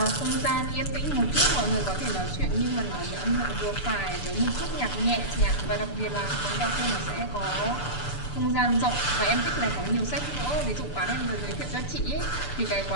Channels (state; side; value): late; right; 6.9 ms